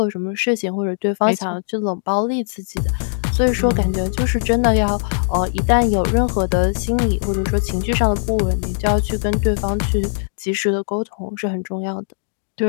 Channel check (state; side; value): silent; right; digital silence